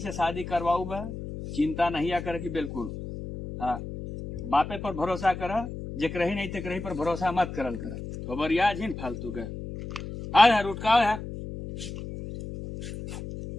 शादी करवाऊ बा। चिंता नहीं आ करे कि बिल्कुल। हाँ बापे पर भरोसा कर, जेकर ही नहीं तेकर ही पर भरोसा मत करल कर। खबर याद ही फालतू के आ रुटका है।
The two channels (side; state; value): left; noise; hum, 9 dB below the sound